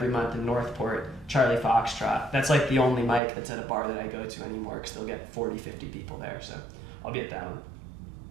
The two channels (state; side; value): drops out; left; at 3.2 s